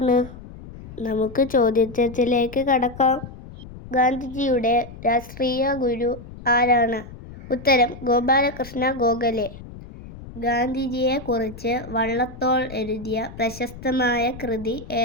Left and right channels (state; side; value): noise; left; rumble, 15 dB below the sound